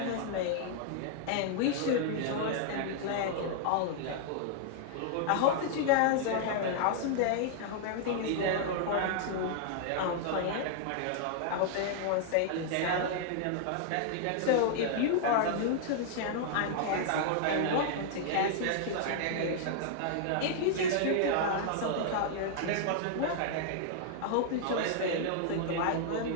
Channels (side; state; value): both; different; correlation -0.01